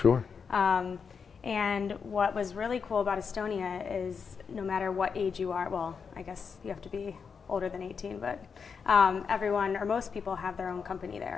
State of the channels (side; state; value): right; quieter; 6.0 dB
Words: Sure. And what was really cool about Estonia is no matter what age you are, well, I guess you have to be older than 18, but everyone or most people have their own company